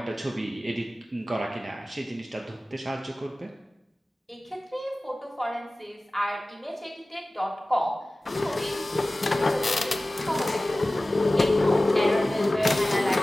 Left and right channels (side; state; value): both; normal; correlation 0.97